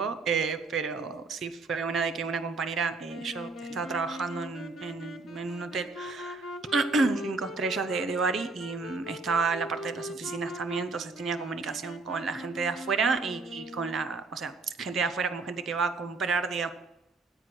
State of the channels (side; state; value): left; quieter; 3.7 dB